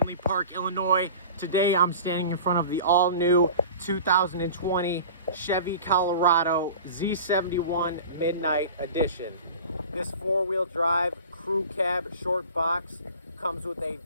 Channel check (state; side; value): inverted; both; correlation -0.39